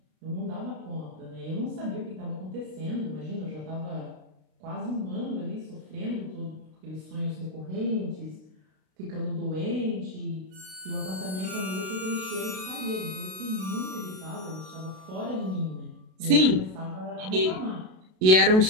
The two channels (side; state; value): left; late; 32 ms